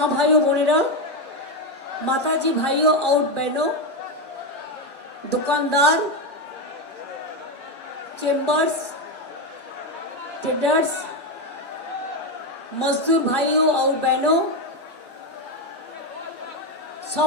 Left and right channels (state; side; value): normal; both; correlation 0.10